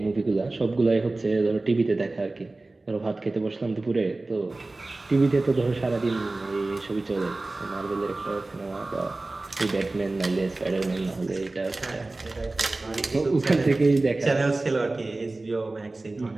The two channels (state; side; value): quieter; left; 3.1 dB